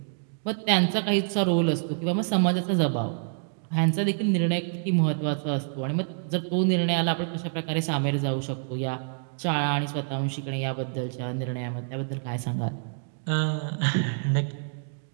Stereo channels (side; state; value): left; silent; digital silence